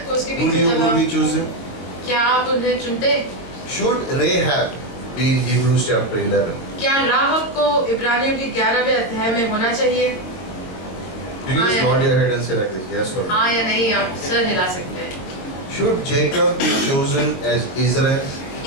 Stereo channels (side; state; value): right; late; 22 ms